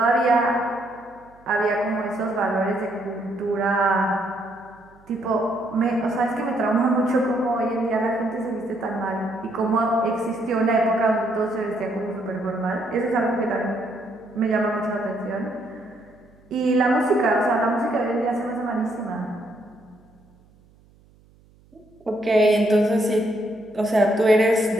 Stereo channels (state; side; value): noise; right; hum, 29 dB below the sound